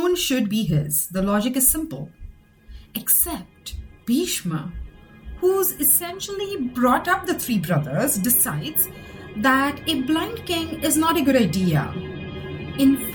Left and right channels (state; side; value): identical; both; correlation 1.00